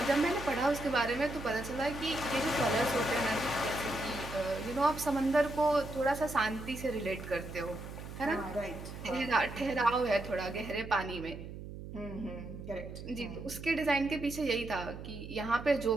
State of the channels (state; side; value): noise; right; hum, 11 dB below the sound